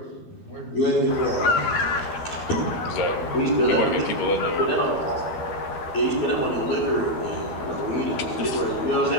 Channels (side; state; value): right; late; 12 ms